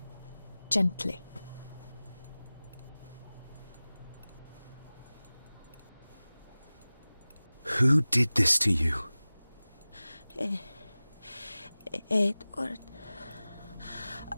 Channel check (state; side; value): inverted; both; correlation -0.98